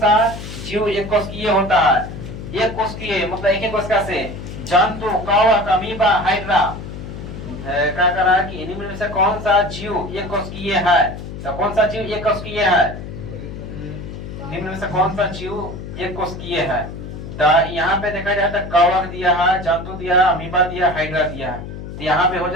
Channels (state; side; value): noise; left; hum, 10 dB below the sound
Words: जीव एक कोशिकीय होता है? एक कोशिकीय मतलब एक ही कोशिका से। जंतु, कवक, अमीबा, हाइड्रा। क्या कर रहा है कि इन्हीं में से कौन सा जीव एक कोशिकीय है? तो कौन सा जीव एक कोशिकीय है? निम्न में से कौन सा जीव एक कोशिकीय है? तो यहाँ पे देखा जाए तो कवक दिया है, जंतु दिया है, अमीबा दिया, हाइड्रा दिया है। तो यहाँ पे हो